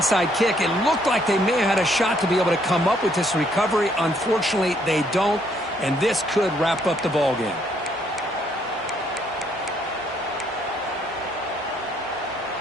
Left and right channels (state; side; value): normal; both; correlation 0.69